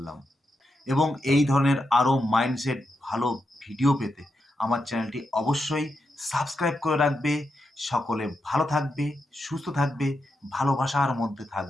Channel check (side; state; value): both; normal; correlation 0.85